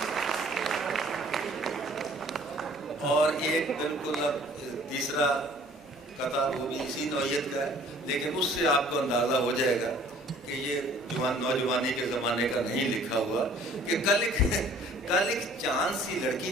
اور ایک بالکل اب تیسرا قطعہ وہ بھی اسی نوعیت کا ہے، لیکن اس سے آپ کو اندازہ ہو جائے گا کہ یہ نوجوانی کے زمانے کا نہیں لکھا ہوا، کہ کل ایک چاند سی لڑکی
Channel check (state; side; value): normal; both; correlation 0.54